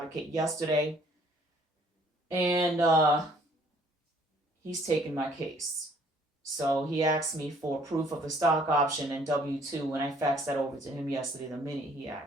yesterday, and he's taken my case. So he asked me for proof of the stock option and W-2 when I faxed that over to him yesterday the minute he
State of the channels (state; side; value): normal; both; correlation 0.60